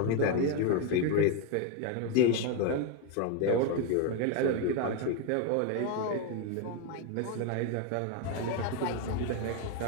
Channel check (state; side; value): different; both; correlation 0.01